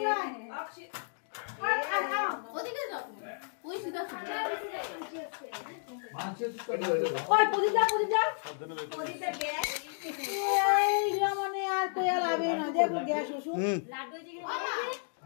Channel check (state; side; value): silent; right; digital silence